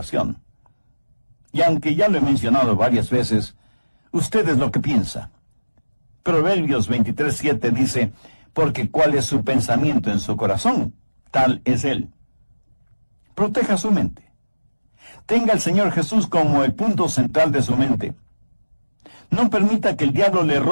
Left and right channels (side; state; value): both; inverted; correlation -1.00